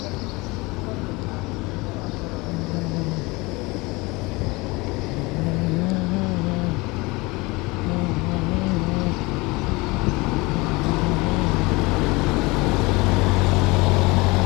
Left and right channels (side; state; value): right; quieter; 24.1 dB